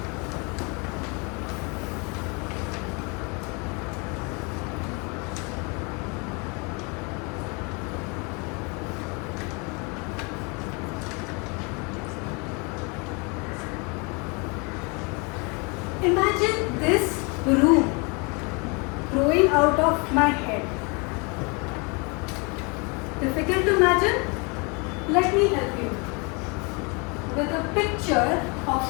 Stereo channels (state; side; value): quieter; right; 31.1 dB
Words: Imagine this room growing out of my head. Difficult to imagine? Let me help you with a picture